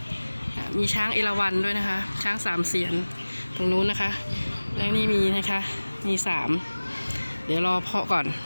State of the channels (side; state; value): both; inverted; correlation -1.00